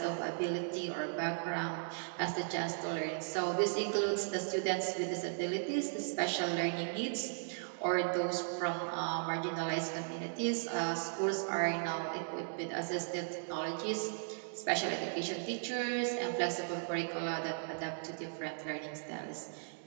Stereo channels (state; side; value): silent; left; digital silence